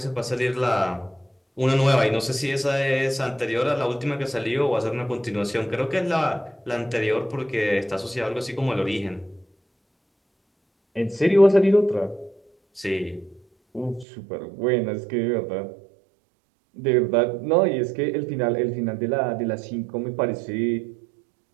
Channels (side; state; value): left; drops out; at 14.1 s